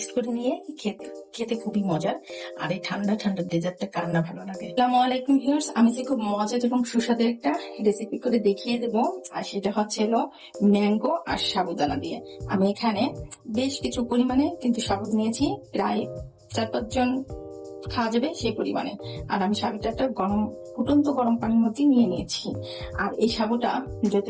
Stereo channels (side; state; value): both; identical; correlation 1.00